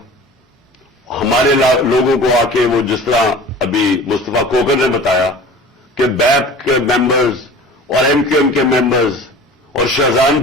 ہمارے لوگوں کو آ کے وہ جس طرح ابھی مصطفیٰ کوکر نے بتایا کہ بیپ کے ممبرز اور ایم کیو ایم کے ممبرز اور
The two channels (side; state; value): both; normal; correlation 0.41